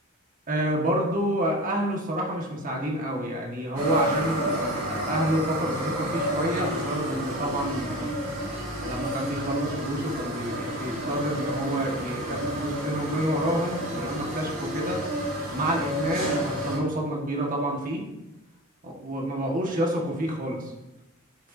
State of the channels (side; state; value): both; normal; correlation 0.33